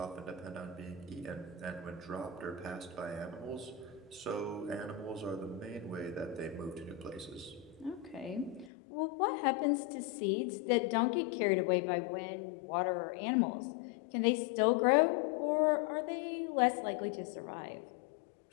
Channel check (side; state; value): right; drops out; at 8.7 s